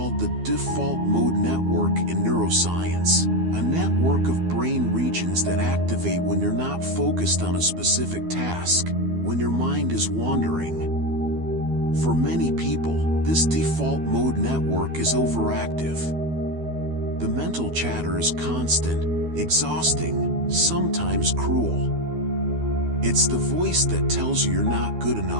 the default mode network in neuroscience, a network of brain regions that activate when you're not focused on a specific task, when your mind is wandering. For many people, this default mode network is overactive. The mental chatter is constant, exhausting, sometimes cruel. It's the voice that tells you you're not good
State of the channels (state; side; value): late; left; 12 ms